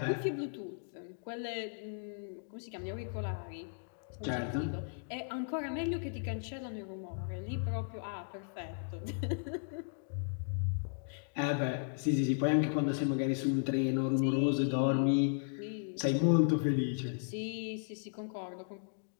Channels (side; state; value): right; silent; digital silence